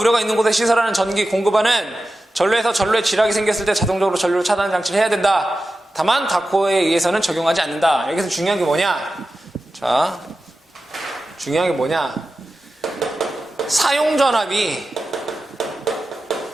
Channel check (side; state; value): both; normal; correlation 0.93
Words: 있는 곳에 시설하는 전기 공급하는 전로에서 전로에 지락이 생겼을 때 자동적으로 전로 차단 장치를 해야 된다. 다만 다코에 의해서는 적용하지 않는다. 여기서 중요한 게 뭐냐? 자, 중요한 게 뭐냐? 사용 전압이